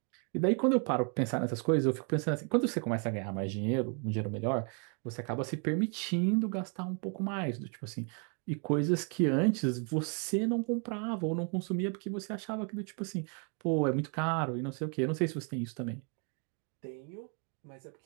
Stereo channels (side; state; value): left; quieter; 37.8 dB